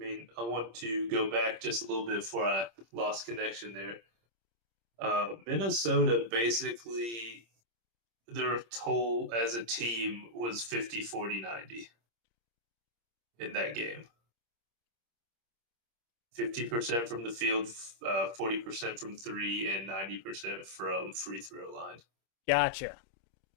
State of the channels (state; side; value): late; left; 26 ms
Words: I want to go back just a little bit before I lost connection there. Minnesota basically, their total as a team was 50, 40, 90 in that game. 50% from the field, 40% from 3, and 90% from free throw line. Gotcha.